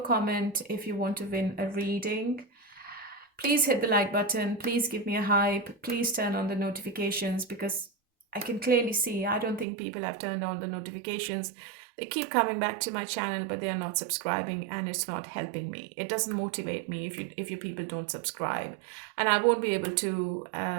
comment if you want to win a reading. Please hit the like button. Please give me a hype. Please turn on the notifications, because I can clearly see I don't think people have turned on the notifications. They keep coming back to my channel, but they are not subscribing, and it's not helping me. It doesn't motivate me if you people don't subscribe, and I won't be able to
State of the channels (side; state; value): left; drops out; at 9.7 s